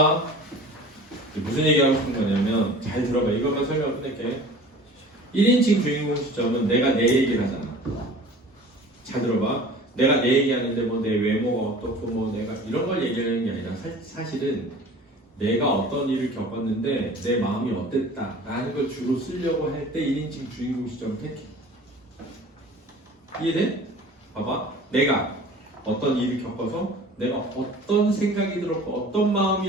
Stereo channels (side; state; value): both; normal; correlation 0.43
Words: 무슨 얘기하고 싶은 거냐면 잘 들어봐. 이것만 설명 끝낼게. 1인칭 주인공 시점은 내가 내 얘기를 하잖아. 잘 들어봐. 내가 내 얘기하는데 뭐 내 외모가 어떻고 뭐 내가 이런 걸 얘기하는 게 아니라 사실은 내가 어떤 일을 겪었는데 내 마음이 어땠다 라는 걸 주로 쓰려고 할 때 1인칭 주인공 시점을 택해. 이해돼? 봐봐. 내가 어떤 일을 겪어서 내가 어떤 생각이 들었고 어떤